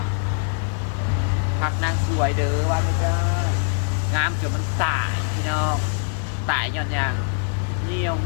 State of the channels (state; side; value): silent; right; 56 dB below the other